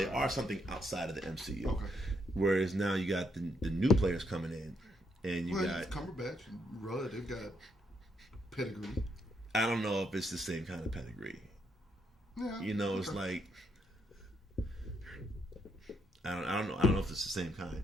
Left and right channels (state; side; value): normal; both; correlation 0.75